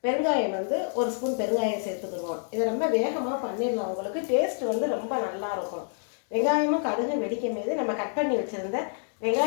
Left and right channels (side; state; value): right; silent; digital silence